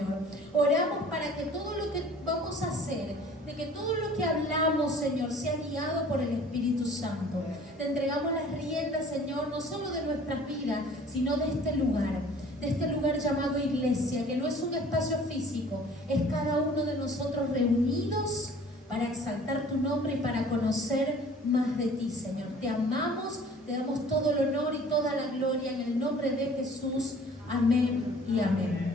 Oramos para que todo lo que vamos a hacer, de que todo lo que hablamos, Señor, sea guiado por el Espíritu Santo. Te entregamos las riendas, Señor, no solo de nuestras vidas, sino de este lugar llamado iglesia, que no es un espacio físico, es cada uno de nosotros reunidos para exaltar tu nombre y para conocer más de ti, Señor. Te amamos, te damos todo el honor y toda la gloria en el nombre de Jesús. Amén y amén.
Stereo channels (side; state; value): both; normal; correlation 0.50